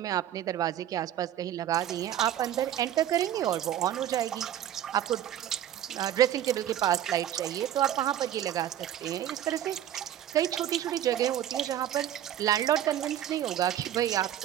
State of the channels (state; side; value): quieter; left; 11.4 dB